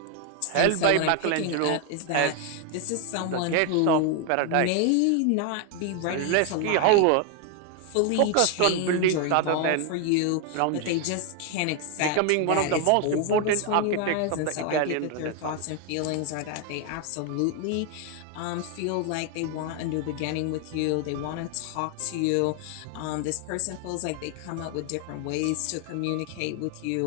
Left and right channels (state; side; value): different; both; correlation 0.01